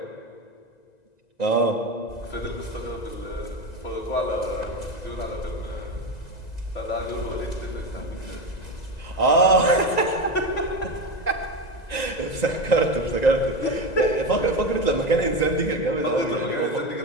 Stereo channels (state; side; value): late; right; 2.0 ms